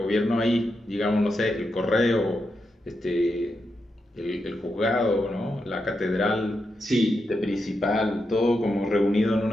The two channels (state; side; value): normal; both; correlation 0.86